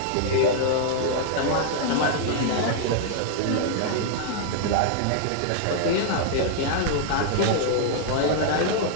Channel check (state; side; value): different; both; correlation -0.01